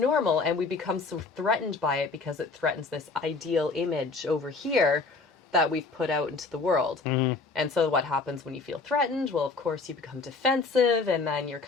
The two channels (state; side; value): quieter; right; 4.0 dB